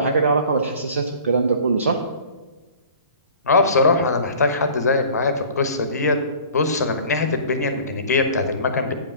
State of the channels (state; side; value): inverted; both; correlation -0.46